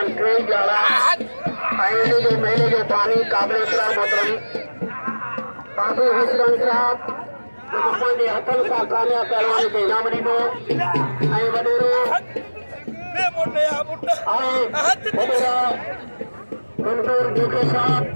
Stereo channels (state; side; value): inverted; both; correlation -1.00